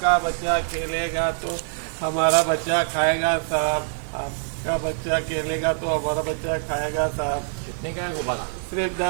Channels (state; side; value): silent; left; 62 dB below the other